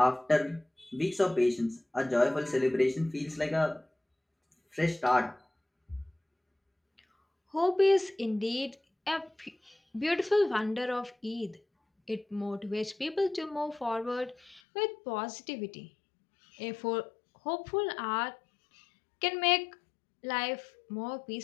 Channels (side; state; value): right; drops out; at 14.6 s